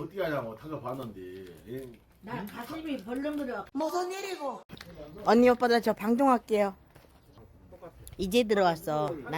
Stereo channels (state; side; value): identical; both; correlation 1.00